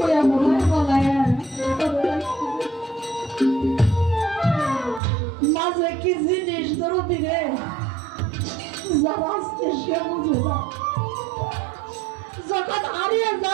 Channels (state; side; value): drops out; left; at 5.0 s